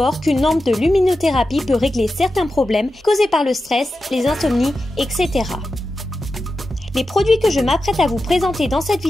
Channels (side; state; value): both; normal; correlation 0.91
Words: qu'une lampe de luminothérapie peut régler certains problèmes causés par le stress, les insomnies, etc. Les produits que je m'apprête à vous présenter dans cette